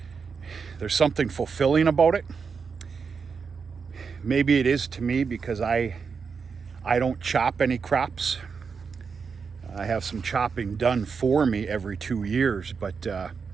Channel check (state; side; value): quieter; left; 5.6 dB